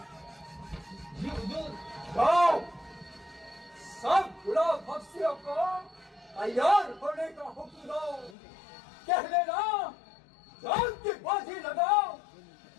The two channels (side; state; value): right; drops out; at 8.3 s